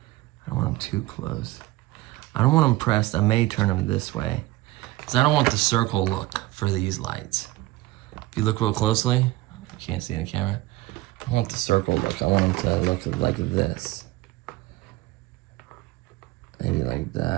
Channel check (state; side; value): quieter; left; 18.4 dB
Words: I don't want them too close. I don't want them pressed. I may turn them this way, because I don't want the circle look for these lights. If you look real closely, you can't see in the camera, I want the circle look. I want them to look like this. Maybe like